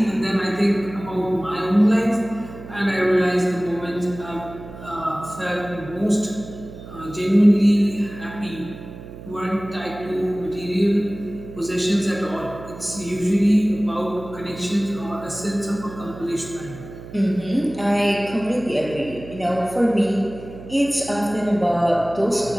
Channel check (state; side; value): noise; right; hum, 14 dB below the sound